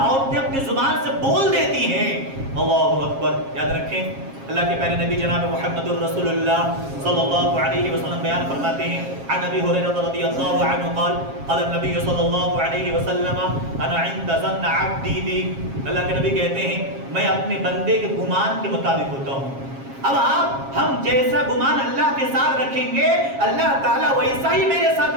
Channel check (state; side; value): late; left; 7.4 ms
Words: اپنی زبان سے بول دیتی ہیں. اللہ اکبر. یاد رکھیں اللہ کے پیارے نبی جناب محمد الرسول اللہ صلی اللہ علیہ وسلم بیان فرماتے ہیں عن ابی ہریرہ رضی اللہ عنہ قال قال النبی صلی اللہ علیہ وسلم انا عند ظن عبدی بی. اللہ کے نبی کہتے ہیں میں اپنے بندے کے گمان کے مطابق ہوتا ہوں. اب آپ ہم جیسا گمان اللہ کے ساتھ رکھیں گے اللہ تعالیٰ ویسا ہی میرے ساتھ